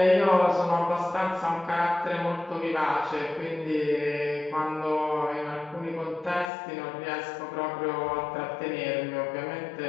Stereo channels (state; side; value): drops out; right; at 6.5 s